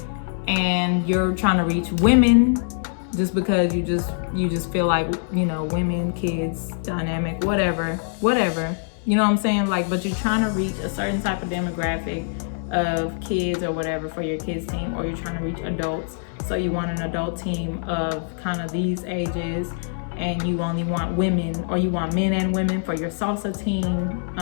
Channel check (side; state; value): right; silent; digital silence